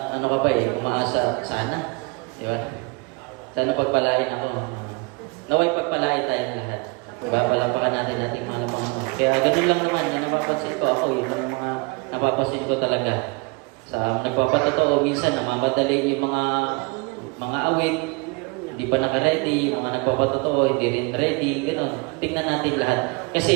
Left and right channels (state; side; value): quieter; left; 27.9 dB